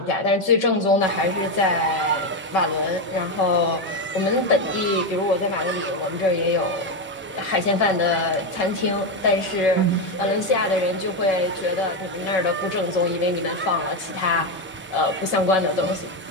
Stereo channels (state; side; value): normal; both; correlation 0.09